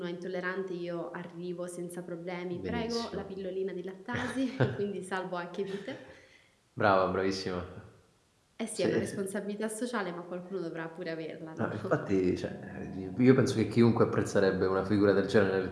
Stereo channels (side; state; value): both; identical; correlation 1.00